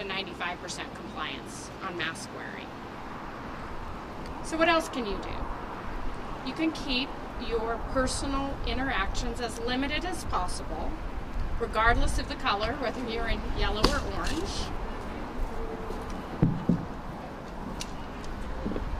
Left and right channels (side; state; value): both; identical; correlation 1.00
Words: 95% compliance on mask wearing. So what else can you do? You can keep your personal interactions as limited as possible, regardless of the color, whether you're in yellow or orange.